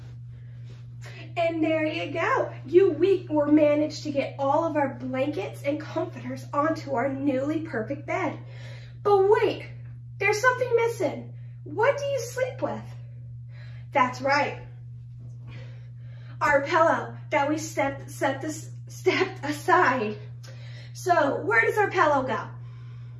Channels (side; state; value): both; identical; correlation 1.00